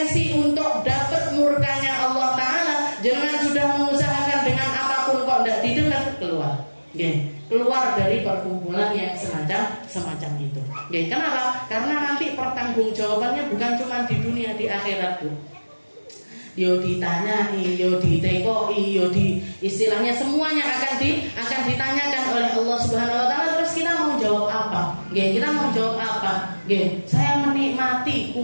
untuk dapat murkanya Allah Ta'ala, jangan sudah mengusahakan dengan apapun kok tidak didengar, keluar. Gini. Keluar dari perkumpulan yang semacam itu. Oke, kenapa? Karena nanti pertanggungjawabannya bukan cuma di dunia, di akhirat, Bu. Yo ditanyai, yo ditekoi, yo istilahnya semuanya akan ditanyakan oleh Allah Subhanahu wa taala. Terus kita mau jawab apa? Oke, kita mau jawab apa? Oke, saya menikmati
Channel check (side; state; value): both; inverted; correlation -1.00